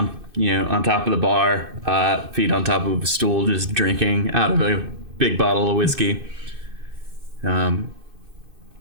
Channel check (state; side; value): late; left; 2.6 ms